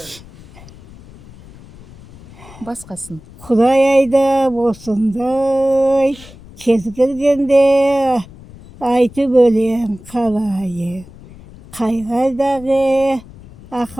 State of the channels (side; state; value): left; noise; rumble, 20 dB below the sound